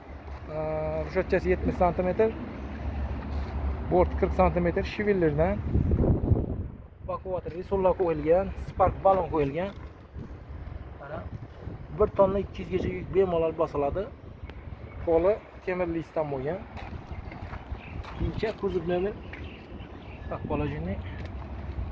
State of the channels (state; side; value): identical; both; correlation 1.00